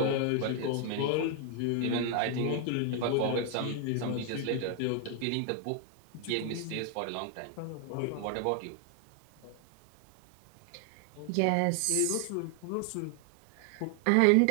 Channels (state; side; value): different; both; correlation 0.00